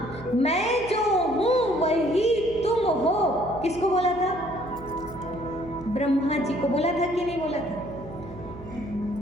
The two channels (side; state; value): right; noise; hum, 15 dB below the sound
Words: मैं जो हूँ वही तुम हो। किसको बोला था? ब्रह्मा जी को बोला था कि नहीं बोला था?